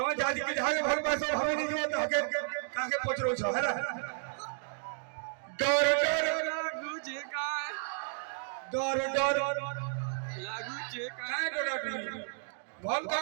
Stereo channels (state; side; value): silent; left; digital silence